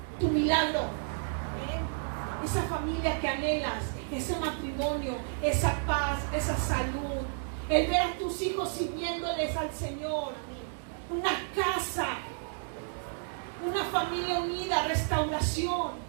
tu milagro. Esa familia que anhelas, ese matrimonio, esa paz, esa salud, el ver a tus hijos sirviéndoles al Señor, una casa, una familia unida, restauración.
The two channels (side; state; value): left; silent; digital silence